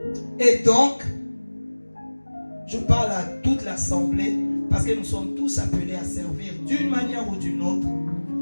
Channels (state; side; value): inverted; both; correlation -1.00